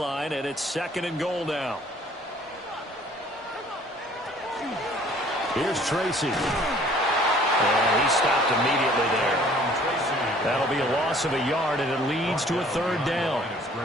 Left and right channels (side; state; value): both; normal; correlation 0.55